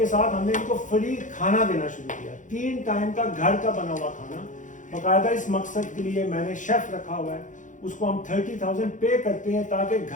ساتھ ہم نے ان کو فری کھانا دینا شروع کیا. 3 ٹائم کا گھر کا بنا ہوا کھانا باقاعدہ. اس مقصد کے لیے میں نے شیف رکھا ہوا ہے, اس کو ہم 30,000 پے کرتے ہیں تاکہ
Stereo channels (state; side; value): late; right; 0.37 ms